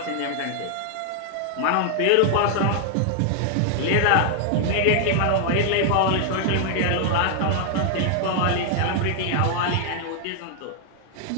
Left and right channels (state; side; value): different; both; correlation 0.00